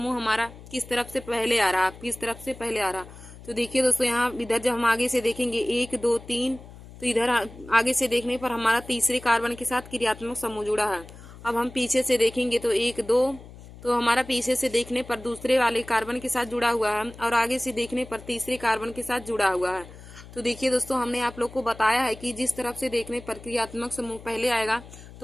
हमारा किस तरफ से पहले आ रहा, किस तरफ से पहले आ रहा। तो देखिए दोस्तों, यहाँ इधर जब हम आगे से देखेंगे 1 2 3, तो इधर आगे से देखने पर हमारा तीसरे कार्बन के साथ क्रियात्मक समूह जुड़ा है। अब हम पीछे से देखेंगे तो 1 2, तो हमारा पीछे से देखने पर दूसरे वाले कार्बन के साथ जुड़ा हुआ है, और आगे से देखने पर तीसरे कार्बन के साथ जुड़ा हुआ है। तो देखिए दोस्तों, हमने आप लोग को बताया है कि जिस तरफ से देखने पर क्रियात्मक समूह पहले आएगा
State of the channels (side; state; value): left; noise; hum, 18 dB below the sound